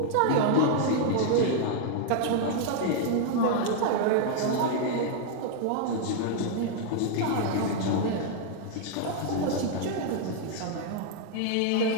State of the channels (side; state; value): both; different; correlation 0.00